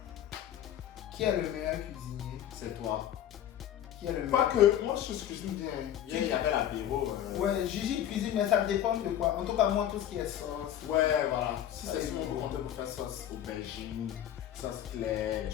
Qui est le meilleur cuisinier? C'est toi. Qui est le Pas meilleur? que, moi je cuisine bien. Hier, il y avait l'apéro. Ouais, Gigi cuisine, mais ça dépend de quoi. En tout cas, moi, tout ce qui est sauce. Ouais, voilà. Si Ça c'est dépend. souvent pour compter pour faire sauce aubergine, sauce claire, les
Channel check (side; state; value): right; quieter; 11.0 dB